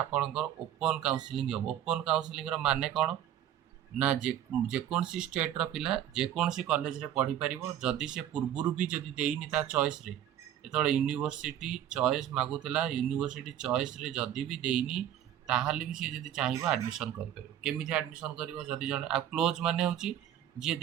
ओपन काउंसलिंग हम। ओपन काउंसलिंग माने कौन ना, जेकोसी स्टेट्र पिला जेकोसी कॉलेज रे पढ़ी पारिबो, जदि से पूर्वरु भी जदि देइनी ता चॉइस रे, जेतबेले यूनिवर्सिटी चॉइस मागुतला, यूनिवर्सिटी चॉइस रे जदि भी देइनी ताहाले भी से जदि चाहिबो एडमिशन करि पारिबो। केमिति एडमिशन करिवो, जदि जने आ क्लोज माने होची जे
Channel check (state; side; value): quieter; left; 10.9 dB